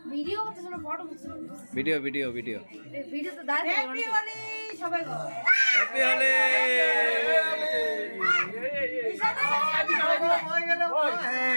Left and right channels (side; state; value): both; inverted; correlation -1.00